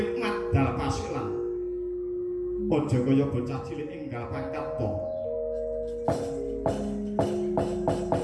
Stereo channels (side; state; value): both; identical; correlation 1.00